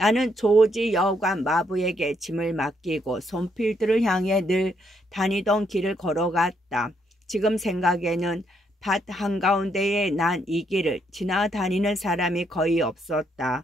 조지 여관 마부에게 짐을 맡기고 손필드를 향해 늘 다니던 길을 걸어갔다. 지금 생각에는 밭 한가운데에 난 이 길을 지나다니는 사람이 거의 없었다.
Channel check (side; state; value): both; normal; correlation 0.74